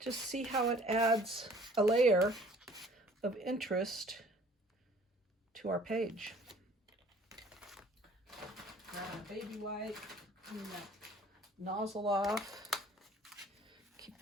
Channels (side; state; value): both; normal; correlation 0.54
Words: see how it adds a layer of interest to our page. Grab a baby wipe. Clean that nozzle off. Keep